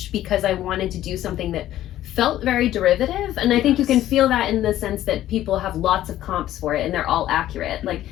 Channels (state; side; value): quieter; right; 13.3 dB